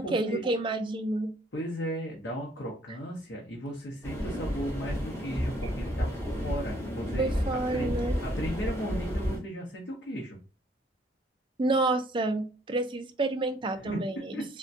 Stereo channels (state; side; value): normal; both; correlation 0.64